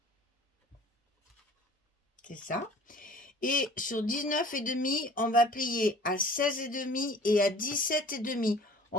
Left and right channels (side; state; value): both; normal; correlation 0.48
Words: C'est ça. Et sur 19,5, on va plier à 16,5 et à 17,5.